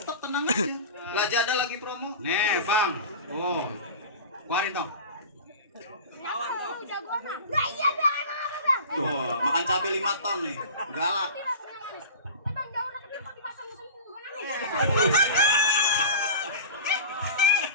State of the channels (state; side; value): inverted; both; correlation -0.35